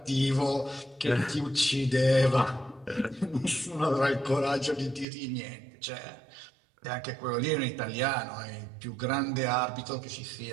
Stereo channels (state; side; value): drops out; left; at 5.1 s